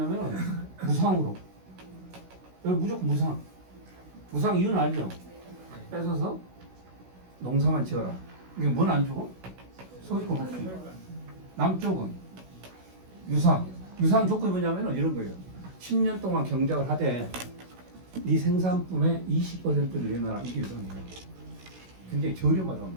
무상으로. 여기 무조건 무상. 무상 이유는 알죠? 뺏어서 농사만 지어라. 이게 뭘 안 주고? 소유권 없이. 남쪽은 유상. 유상 조건이 뭐냐면 이런 거예요. 10년 동안 경작을 하되 네 생산품의 20%를 내놔라. 이게 유상이에요. 굉장히 저렴하단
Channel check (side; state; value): left; late; 16 ms